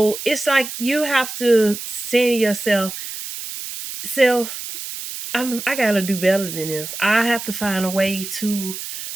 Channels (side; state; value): right; noise; hiss, 8 dB below the sound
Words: it's like you have to say to yourself, self, I gotta do better than this. I have to find a way to,